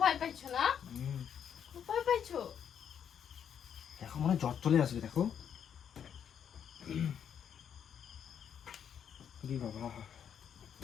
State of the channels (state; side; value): quieter; right; 8.4 dB